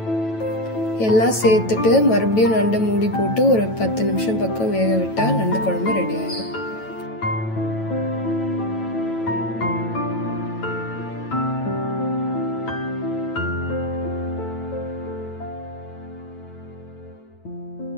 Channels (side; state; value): right; late; 9.1 ms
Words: எல்லாம் சேர்த்துட்டு மறுபடியும் நண்டை மூடி போட்டு ஒரு 10 நிமிஷம் பக்கம் வேக விட்டா நண்டு குழம்பு ரெடி ஆயிடும்.